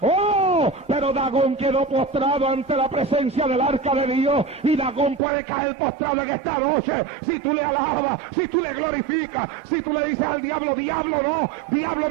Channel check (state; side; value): drops out; left; at 5.2 s